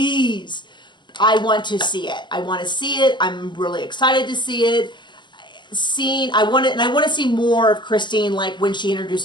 I want to see it. I want to see it. I'm really excited to see it. I want to see more of Christine, like when she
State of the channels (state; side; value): late; right; 0.22 ms